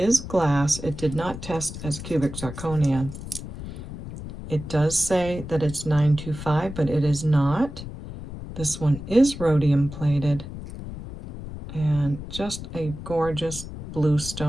glass. It did not test as cubic zirconia. It does say that it's 925, but it is not. This one is rhodium plated, and just a gorgeous blue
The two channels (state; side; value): noise; left; rumble, 10 dB below the sound